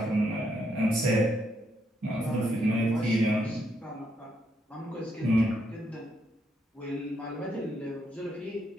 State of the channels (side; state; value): both; normal; correlation 0.77